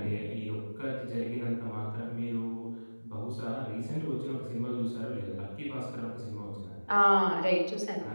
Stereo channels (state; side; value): inverted; both; correlation -1.00